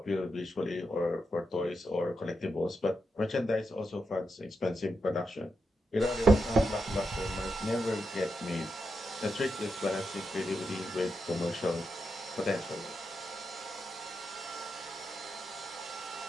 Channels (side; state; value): both; normal; correlation 0.86